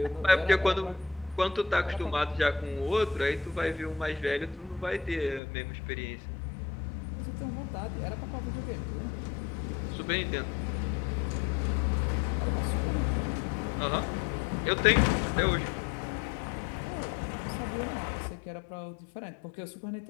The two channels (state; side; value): drops out; right; at 5.4 s